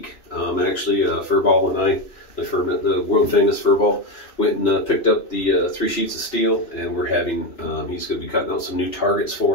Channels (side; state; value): right; late; 3.0 ms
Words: Actually, Furball and I, the world famous Furball, went and picked up the 3 sheets of steel, and we're having, he's going to be cutting out some new targets